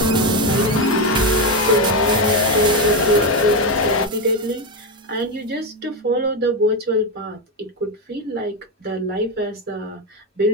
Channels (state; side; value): normal; both; correlation 0.10